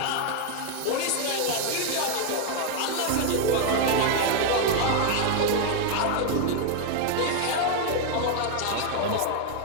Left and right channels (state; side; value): different; both; correlation 0.01